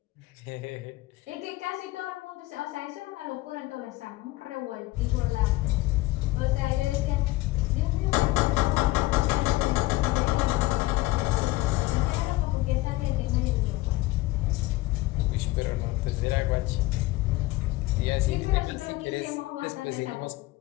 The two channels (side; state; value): right; quieter; 19.1 dB